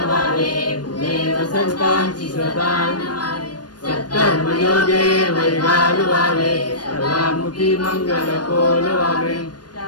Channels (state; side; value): late; right; 0.69 ms